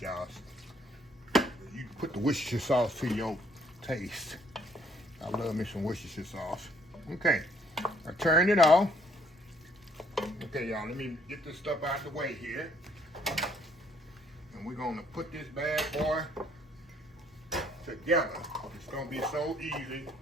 You can put the Worcestershire sauce to your taste. I love me some Worcestershire sauce. Okay, I turned it off. Okay, y'all, let me get this stuff out of the way here. And we're gonna put this bad boy together. It's gonna be so easy and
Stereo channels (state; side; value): normal; both; correlation 0.65